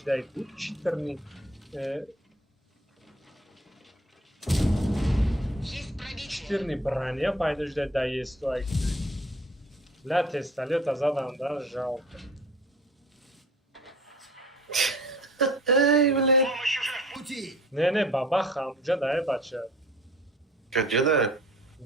дай тут читерный. Есть пробитие. Читерный броня, пойдешь да есть то. Бля, тесталет задам, да, жалко. ای بله Помощь уже в пути! Не, бабаха, амджа дай бача. کجا ده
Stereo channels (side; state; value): both; normal; correlation 0.49